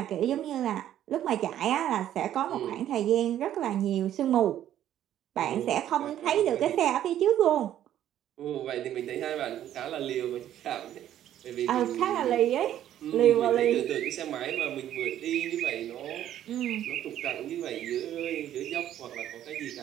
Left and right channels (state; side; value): quieter; left; 11.5 dB